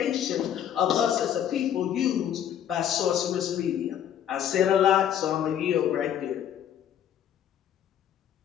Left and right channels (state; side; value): quieter; right; 9.9 dB